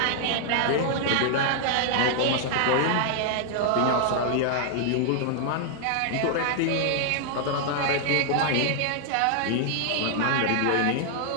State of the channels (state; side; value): different; both; correlation 0.00